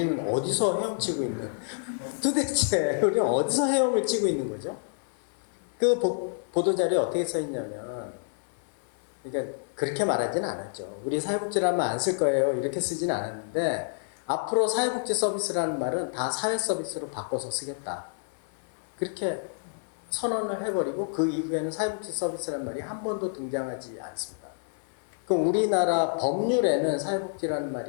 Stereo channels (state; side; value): silent; right; 59 dB below the other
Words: 어디서 헤엄치고 있는 도대체 우리는 어디서 헤엄을 치고 있는 거죠? 그 보도자료에 어떻게 써 있냐면 그러니까 그렇게 말하지는 않았죠. 우리 사회복지라는 말 안 쓸 거예요. 이렇게 쓰지는 않았는데 앞으로 사회복지 서비스라는 말은 다 사회 서비스로 바꿔서 쓰겠다. 그렇게 선언을 해버리고 그 이후에는 사회복지 서비스라는 말이 한 번도 등장하지 않습니다. 그럼 우리나라 법률에는 사회복지라는